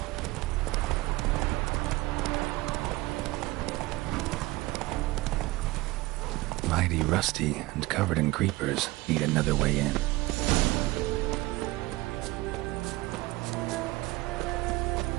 Mighty rusty and covered in creepers. Need another way in.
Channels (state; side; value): quieter; left; 19.9 dB